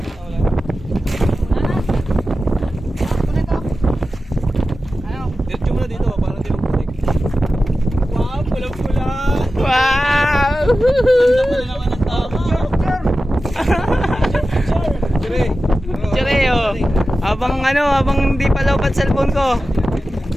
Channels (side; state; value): both; normal; correlation 0.93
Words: Diretso mo na dito, parang di magputik. Wow, pula-pula. Wow! Ganda pala naman ang tama. Dire. Tsure, oh. Habang hindi pa lobat cellphone ko.